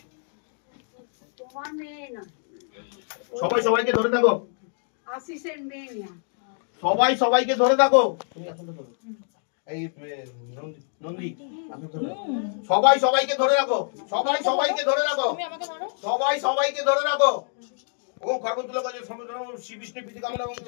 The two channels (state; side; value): silent; right; digital silence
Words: সবাই সবাইকে ধরে থাকো। সবাই সবাইকে ধরে থাকো। এই নন্দী সবাই সবাইকে ধরে রাখো। সবাই সবাইকে ধরে রাখো। সবাই সবাইকে ধরে রাখো। ओम खरगोशुला का जो समुद्र श्री विष्णु पीति कामना ओम